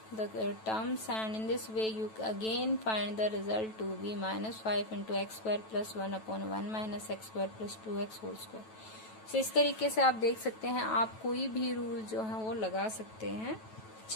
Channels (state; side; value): late; right; 9.2 ms